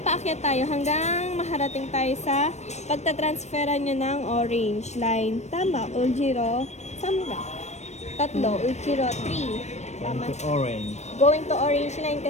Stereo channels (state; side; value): late; right; 0.32 ms